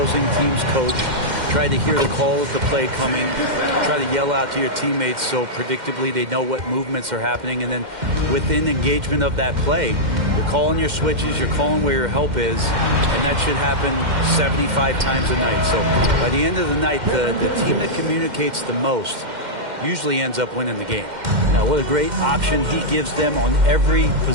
team's coach, try to hear the call of the play coming, try to yell out to your teammates so predictably they know what movements are happening. And then within engagement of that play, you're calling your switches, you're calling where your help is, and that should happen 75 times a night. So by the end of the night, the team that communicates the most usually ends up winning the game. Now, what a great option he gives them on every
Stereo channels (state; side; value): late; left; 2.1 ms